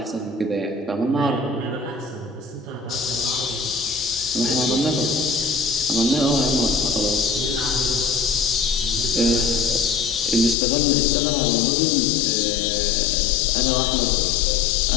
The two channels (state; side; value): drops out; right; at 10.6 s